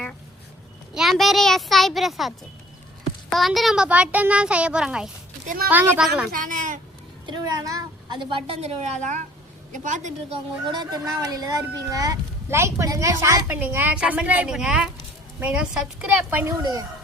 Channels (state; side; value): normal; both; correlation 0.54